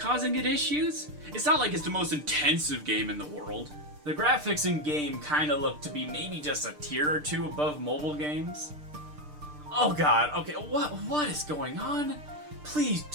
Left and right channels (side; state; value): left; late; 6.7 ms